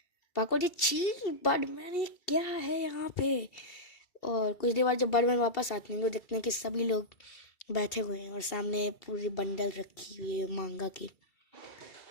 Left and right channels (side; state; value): right; late; 2.7 ms